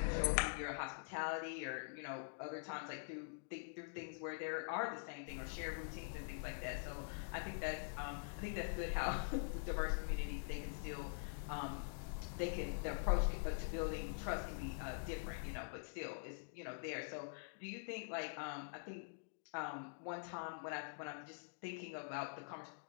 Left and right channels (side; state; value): right; silent; digital silence